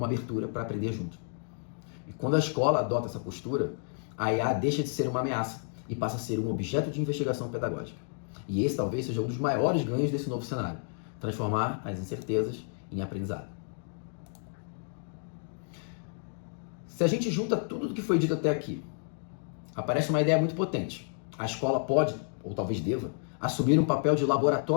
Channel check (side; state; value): right; silent; 57 dB below the other